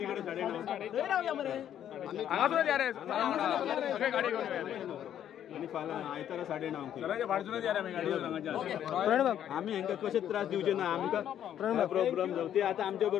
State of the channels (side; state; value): right; quieter; 10.3 dB